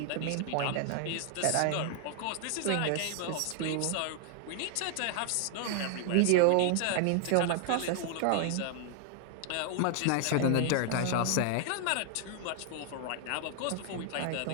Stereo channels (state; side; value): different; both; correlation 0.00